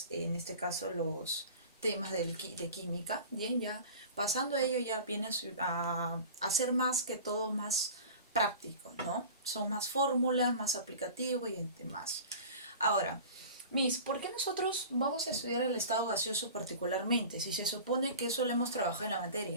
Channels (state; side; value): inverted; both; correlation -0.38